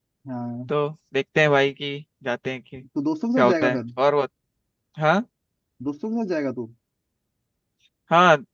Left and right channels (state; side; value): identical; both; correlation 1.00